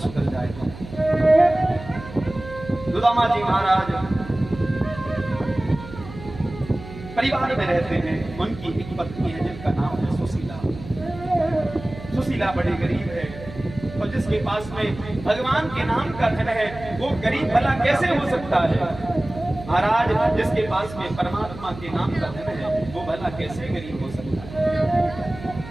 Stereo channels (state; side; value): noise; right; hum, 14 dB below the sound